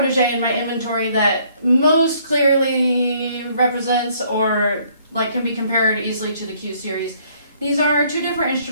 in my inventory that most clearly represents or can be compared easily to the Q Series. These are two different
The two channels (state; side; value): inverted; both; correlation -0.64